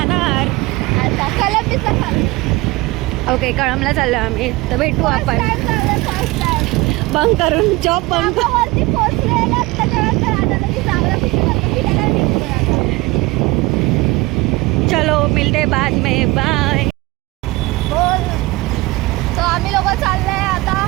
आता कलंबीचा ओके कळमला चाललोय आम्ही. तर भेटू आपण बंक करून जॉब बंक. चलो मिलते बाद में बाय. तो आम्ही लोक चाललोय आता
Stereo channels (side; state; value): left; quieter; 22.1 dB